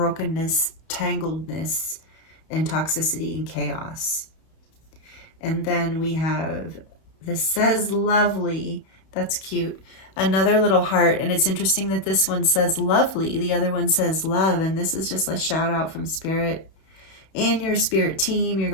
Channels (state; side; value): late; right; 31 ms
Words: tangledness and toxicity and chaos. And then we have, this says lovely. That's cute. Another little heart. And it's interesting that this one says lovely. The other one says love. And this is just a shout out from Spirit and your spirit team, your